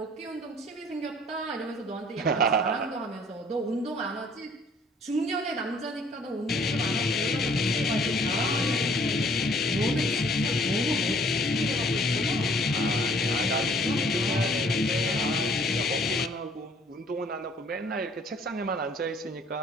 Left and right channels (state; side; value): normal; both; correlation 0.58